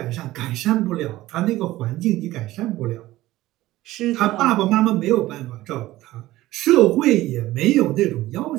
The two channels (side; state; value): left; quieter; 16.5 dB